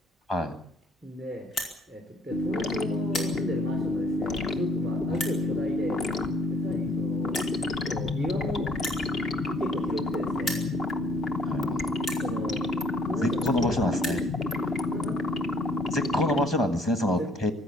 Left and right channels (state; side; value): normal; both; correlation 0.61